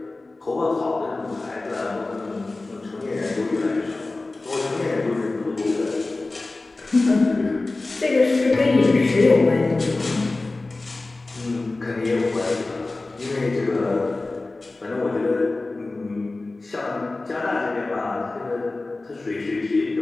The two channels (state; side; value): quieter; right; 3.2 dB